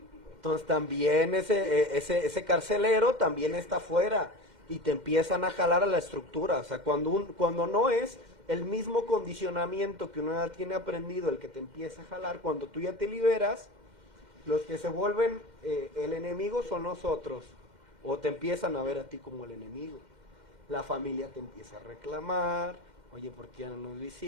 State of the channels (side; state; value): left; late; 2.1 ms